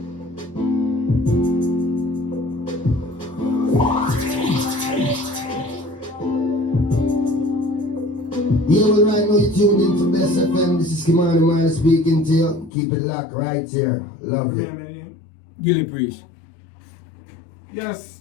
Yeah, well, right now you're tuned into Bess FM. This is Kimani Man speaking to you. Keep it locked right here. Love you. Gillie Priest. Yes,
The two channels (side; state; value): right; drops out; at 12.7 s